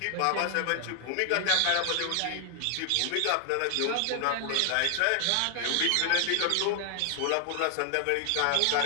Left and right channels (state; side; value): different; both; correlation 0.00